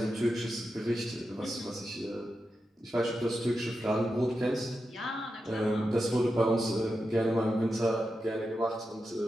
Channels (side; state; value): both; normal; correlation 0.89